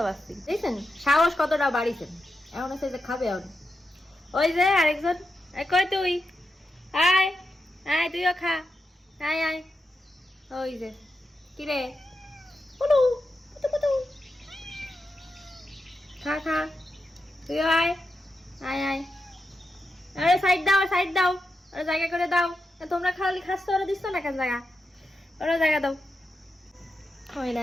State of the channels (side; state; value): both; normal; correlation 0.88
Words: বাজছি। দেখছেন সাহস কতটা বাড়িছেন। এখন হচ্ছে যে খাবে এখন। ওই যে আরেকজন, কই তুই, আয় আয় তুইও খা, আয় আয়। ওই যে কিরে, পুটু পুটু পুটু, খা খা, তুইও আয়, আয় আয়। আরে সাইড দাও, সাইড দাও, ওরা জায়গা করে দাও। তোমরা খালি খাচ্ছ, ওরা দিচ্ছ না কেন জায়গা, ওরা জায়গা দাও। ওই